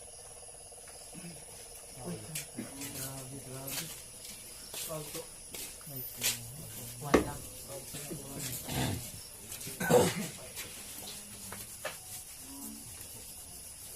Grabe, grabe. Pagko. Ay, kung... One lang.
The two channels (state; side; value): identical; both; correlation 1.00